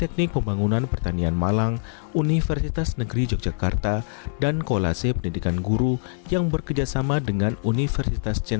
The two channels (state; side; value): silent; right; 61 dB below the other